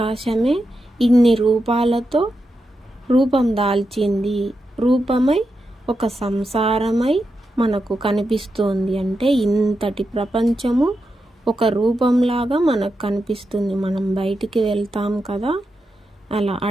ఇన్ని రూపాలతో రూపం దాల్చింది, రూపమై ఒక సంసారమై మనకు కనిపిస్తోంది. అంటే ఇంతటి ప్రపంచము ఒక రూపంలాగా మనకు కనిపిస్తుంది. మనం బయటికి వెళ్తాం కదా, అలా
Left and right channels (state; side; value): normal; both; correlation 0.87